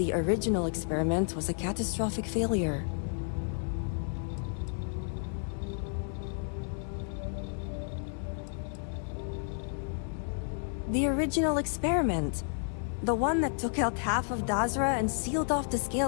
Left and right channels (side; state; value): right; silent; 57 dB below the other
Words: original experiment was a catastrophic failure. The original experiment. The one that took out half of Dazra and sealed off the